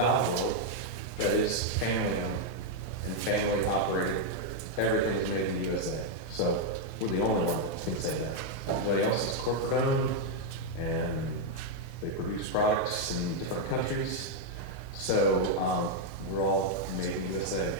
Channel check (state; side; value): normal; both; correlation -0.01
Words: world, that is family owned and family operated. Everything is made in the USA. So we're the only one that can say that. Everybody else is corporate owned, and they produce products in different countries. So we're all made in the USA.